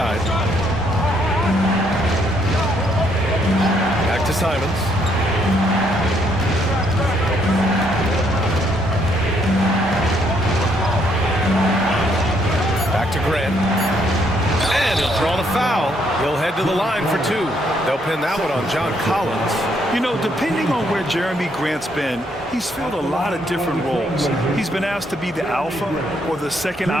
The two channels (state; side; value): normal; both; correlation 0.71